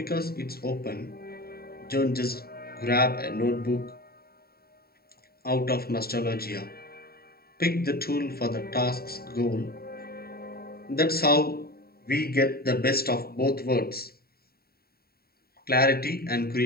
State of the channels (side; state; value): right; late; 0.45 ms